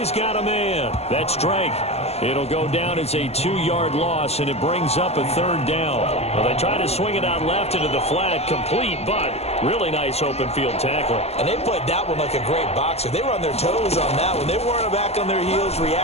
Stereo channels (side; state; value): right; late; 0.30 ms